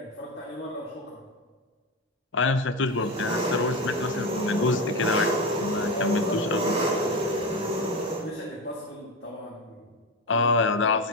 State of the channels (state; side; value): normal; both; correlation 0.18